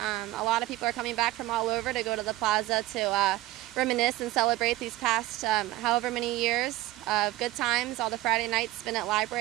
A lot of people are coming back from all over to go to the plaza to reminisce and celebrate these past however many years of good times, all the Friday nights spent at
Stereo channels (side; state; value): left; quieter; 16.7 dB